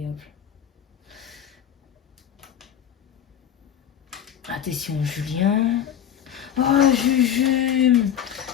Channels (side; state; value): right; quieter; 9.5 dB